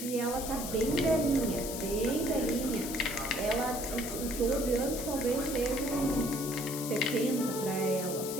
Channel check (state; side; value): noise; left; hiss, 7 dB below the sound